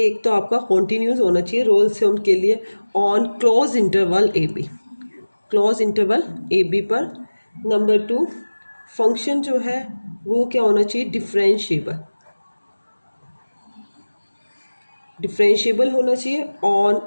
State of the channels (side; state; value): both; inverted; correlation -1.00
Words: एक तो आपका कॉन्टीन्यूस होना चाहिए रोल्स थ्योरम के लिए on close interval A B, close interval A B पर। नंबर 2, फंक्शन जो है वो क्या होना चाहिए? डिफरेंशिएबल, डिफरेंशिएबल होना चाहिए on